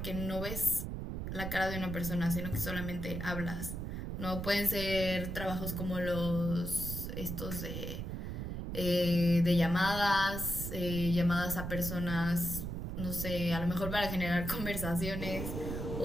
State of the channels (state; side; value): noise; right; rumble, 4 dB below the sound